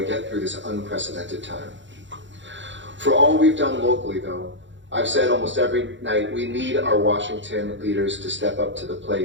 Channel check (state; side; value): late; left; 0.54 ms